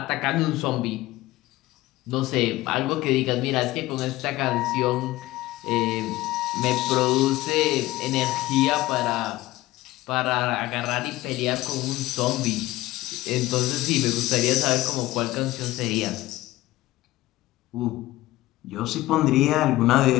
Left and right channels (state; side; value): quieter; right; 17.5 dB